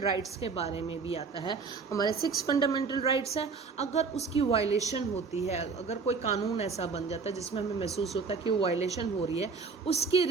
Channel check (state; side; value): quieter; left; 4.8 dB